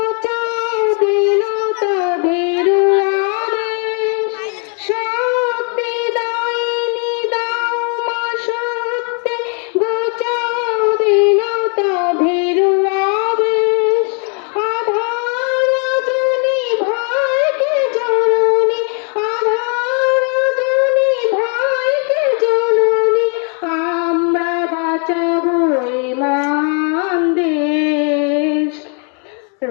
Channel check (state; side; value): quieter; right; 39.6 dB